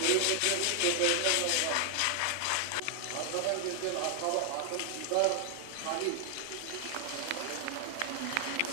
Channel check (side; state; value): both; different; correlation 0.00